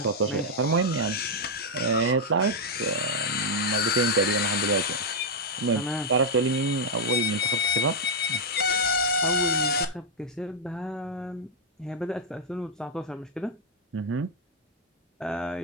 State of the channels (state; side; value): normal; both; correlation -0.03